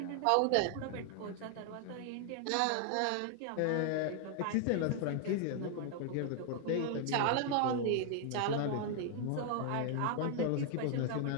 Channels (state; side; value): different; both; correlation 0.00